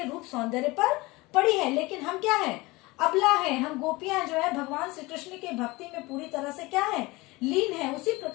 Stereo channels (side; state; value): right; quieter; 22.4 dB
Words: रूप सौंदर्य पर पड़ी है। लेकिन हम क्या है, अबला है, हम गोपियां जो है भगवान श्री कृष्ण के भक्ति में पूरी तरह से क्या है, लीन है, उसी